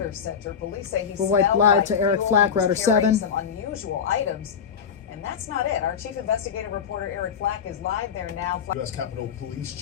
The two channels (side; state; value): right; quieter; 7.2 dB